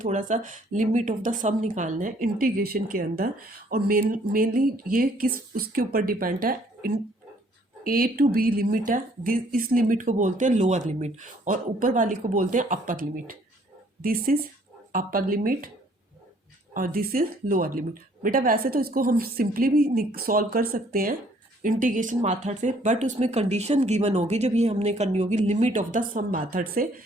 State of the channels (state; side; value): normal; both; correlation 0.61